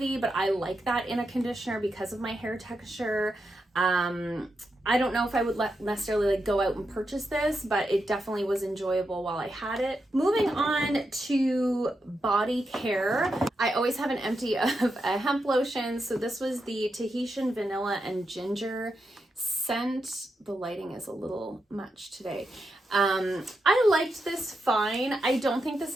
but I like that in a conditioner because of my hair texture. I don't know if I would necessarily like go out and purchase this, but it definitely was enjoyable while I had it. Moving on to body care, I always have an empty of a hemp lotion. So this was the Tahitian Vanilla and Ginger scent. The lighting is a little much today. I liked this fine. I don't think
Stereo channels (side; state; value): both; normal; correlation 0.86